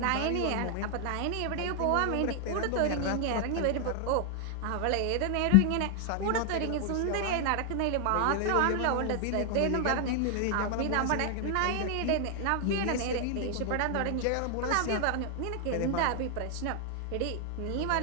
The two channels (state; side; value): different; both; correlation 0.00